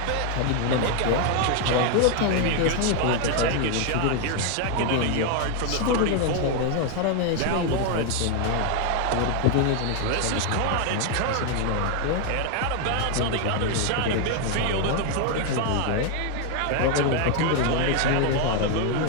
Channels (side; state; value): both; different; correlation 0.00